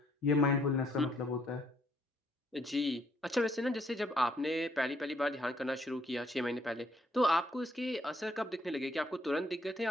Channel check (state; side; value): normal; both; correlation 0.69